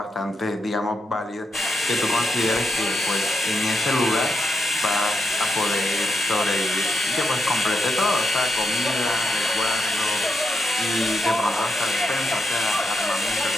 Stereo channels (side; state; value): both; normal; correlation 0.83